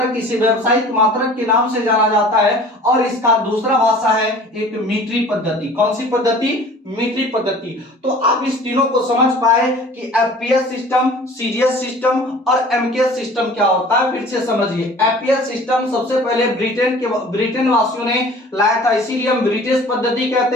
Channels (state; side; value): normal; both; correlation 0.46